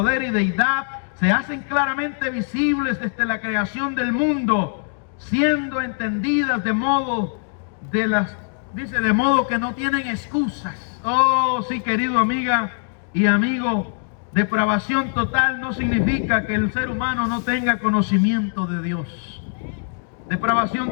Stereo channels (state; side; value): silent; right; digital silence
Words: y deidad, se hacen claramente visibles desde la creación del mundo, siendo entendidas de modo que no tienen excusas. Oh, sí, querido amiga y amigo, depravación total no significa que el ser humano no tenga conocimiento de Dios.